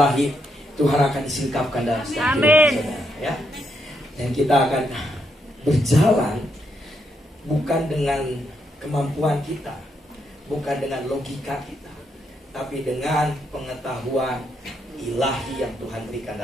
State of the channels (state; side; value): normal; both; correlation 0.78